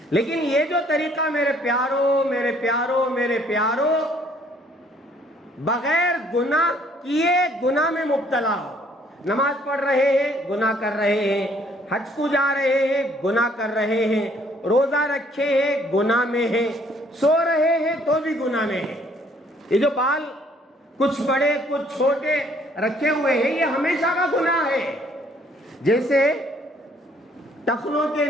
لیکن یہ جو طریقہ میرے پیارو بغیر گناہ کیے گناہ میں مبتلا ہو، نماز پڑھ رہے ہیں گناہ کر رہے ہیں، حج کو جا رہے ہیں گناہ کر رہے ہیں، روزہ رکھے ہیں گناہ میں ہیں، سو رہے ہیں تو بھی گناہ میں ہیں۔ یہ جو بال کچھ بڑے کچھ چھوٹے رکھے ہوئے ہیں یہ ہمیشہ کا گناہ ہے۔ جیسے ٹخنوں کے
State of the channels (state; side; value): normal; both; correlation 0.62